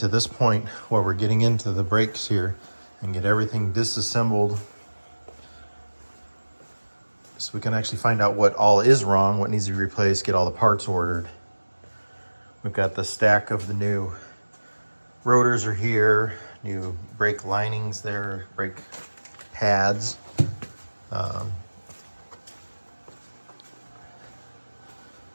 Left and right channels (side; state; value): both; inverted; correlation -1.00